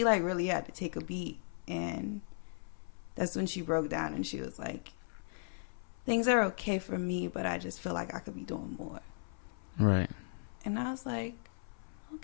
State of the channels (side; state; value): right; silent; 53 dB below the other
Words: like really had to take a beat, and that's when she broke down and she was like, things are okay for me, but I just feel like I could be doing more. Right. And I was like,